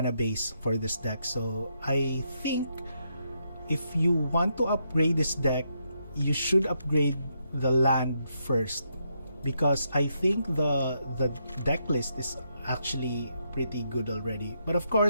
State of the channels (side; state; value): both; inverted; correlation -0.79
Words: base for this deck. So I think if you want to upgrade this deck, you should upgrade the land first, because I think the deck list is actually pretty good already. But of